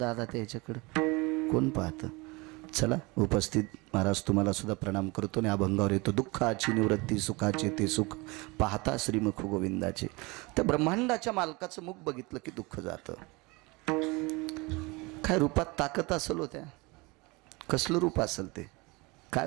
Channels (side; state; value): left; quieter; 25.4 dB